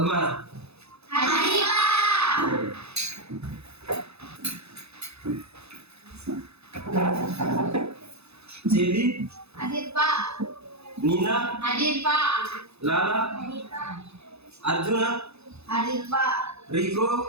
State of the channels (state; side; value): late; left; 0.79 ms